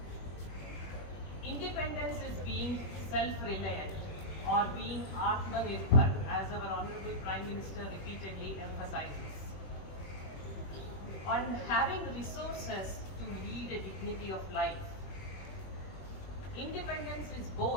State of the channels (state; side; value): late; right; 21 ms